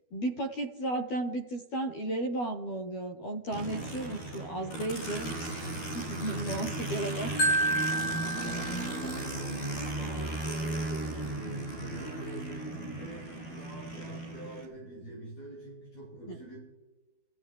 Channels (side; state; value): right; late; 12 ms